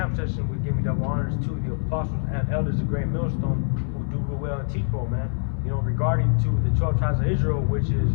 session with giving double honors to the apostles and elders of Great Millstone who do real well and teach well, man. You know, regarding to the 12 tribes of Israel, which is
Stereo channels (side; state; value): right; silent; digital silence